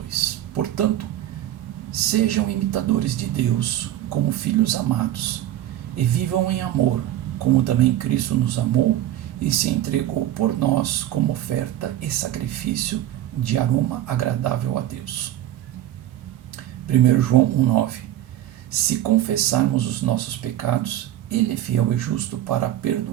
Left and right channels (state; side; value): quieter; left; 13.0 dB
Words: Portanto, sejam imitadores de Deus como filhos amados, e vivam em amor, como também Cristo nos amou e se entregou por nós como oferta e sacrifício de aroma agradável a Deus. 1 João 1,9. Se confessarmos os nossos pecados, Ele é fiel e justo para